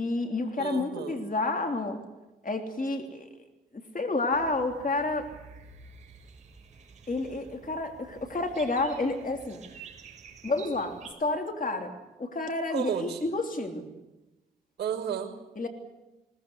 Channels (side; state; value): both; normal; correlation 0.34